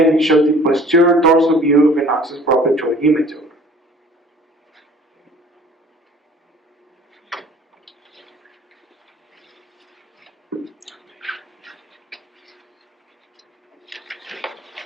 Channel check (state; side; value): normal; both; correlation 0.49